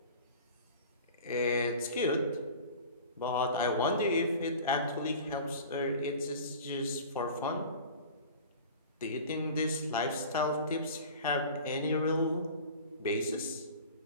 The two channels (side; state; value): both; inverted; correlation -0.39